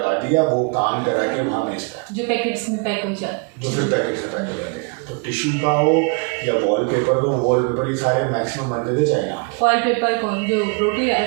दिया, वो काम करा के वहाँ भेजता है, जो पैकेट्स में पैक हो जाए, जो फिर पैकेट से पैक हो जाते हैं। तो टिश्यू का हो या वॉलपेपर, तो वॉलपेपर ही सारे मैक्सिमम बनते थे चाइना। वॉलपेपर कौन, जो रोटी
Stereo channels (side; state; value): left; quieter; 35.3 dB